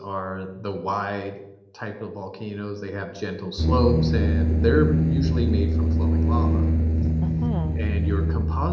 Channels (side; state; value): both; identical; correlation 1.00